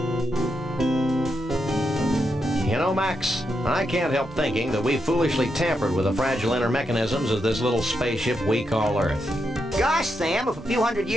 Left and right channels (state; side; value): normal; both; correlation 0.83